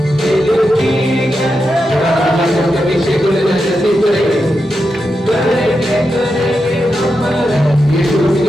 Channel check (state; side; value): normal; both; correlation 0.87